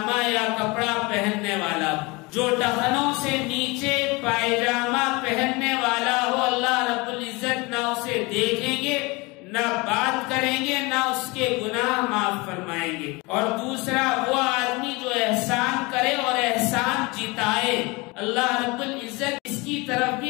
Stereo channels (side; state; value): right; quieter; 25.5 dB